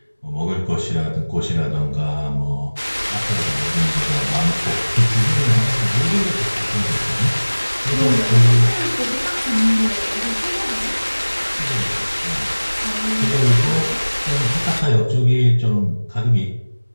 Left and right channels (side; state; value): both; inverted; correlation -1.00